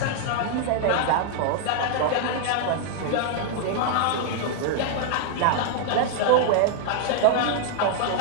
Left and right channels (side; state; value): both; different; correlation -0.01